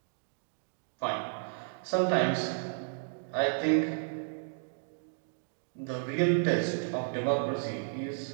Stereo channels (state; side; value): silent; left; digital silence